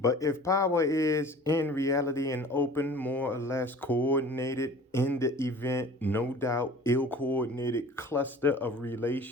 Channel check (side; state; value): both; normal; correlation 0.44